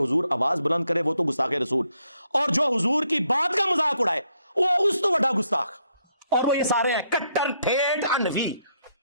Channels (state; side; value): inverted; both; correlation -0.74